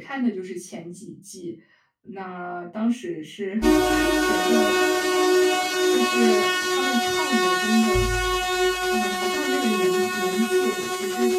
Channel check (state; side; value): identical; both; correlation 1.00